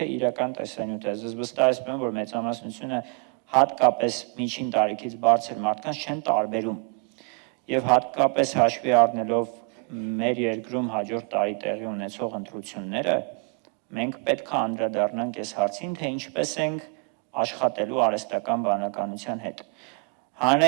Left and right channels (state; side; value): quieter; left; 39.7 dB